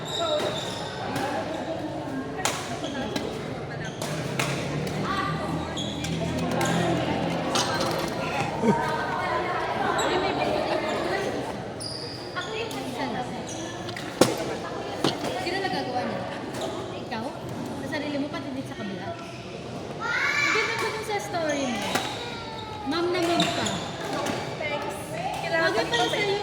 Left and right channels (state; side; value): identical; both; correlation 1.00